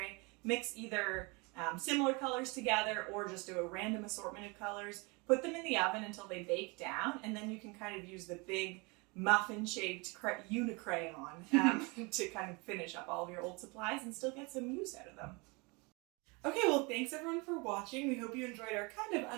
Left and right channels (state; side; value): quieter; left; 28.5 dB